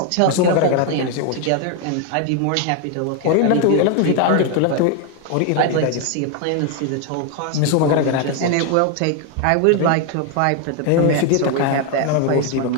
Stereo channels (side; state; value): both; different; correlation 0.01